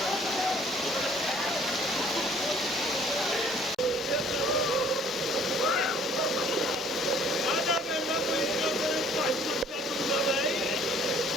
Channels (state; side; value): normal; both; correlation 0.57